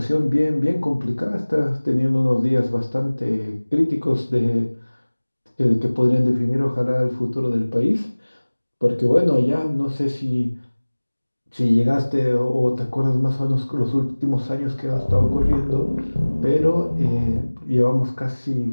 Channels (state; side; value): inverted; both; correlation -1.00